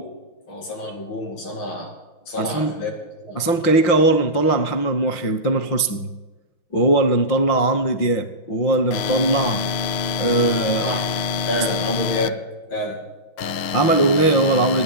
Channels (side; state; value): right; late; 5.7 ms